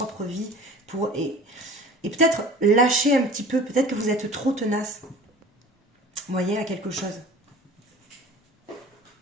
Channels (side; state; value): both; normal; correlation 0.43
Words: vie. Et peut-être lâcher un petit peu. Peut-être que vous êtes trop tenace. Vous voyez, à quelque chose.